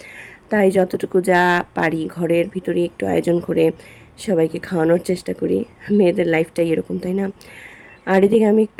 তাই যতটুকু যা পারি ঘরের ভিতরে একটু আয়োজন করে সবাইকে খাওয়ানোর চেষ্টা করি। মেয়েদের লাইফটাই এরকম, তাই না? আর এদিকে আমি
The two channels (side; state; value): both; identical; correlation 1.00